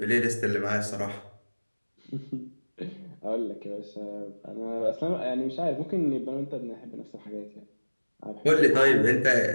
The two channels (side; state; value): both; inverted; correlation -1.00